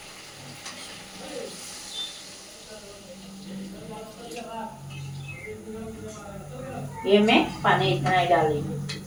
ये मैं पानी इतना ही डालूंगी।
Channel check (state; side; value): identical; both; correlation 1.00